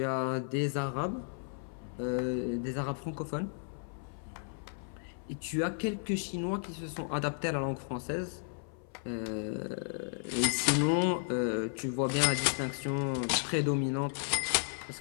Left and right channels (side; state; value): right; silent; 55 dB below the other